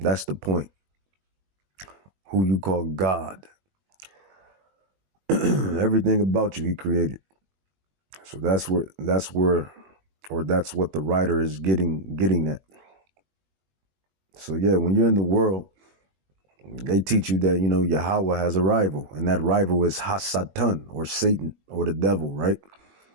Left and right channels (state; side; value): late; left; 21 ms